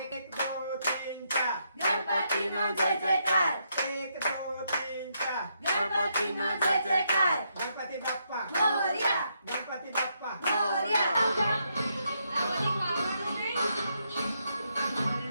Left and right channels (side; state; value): both; inverted; correlation -0.78